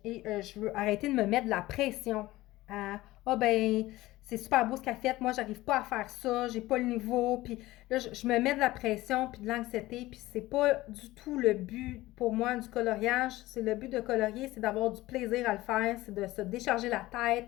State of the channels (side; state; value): right; quieter; 17.9 dB